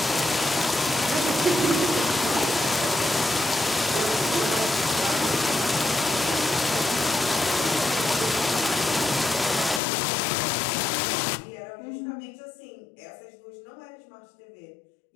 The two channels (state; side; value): drops out; right; at 9.8 s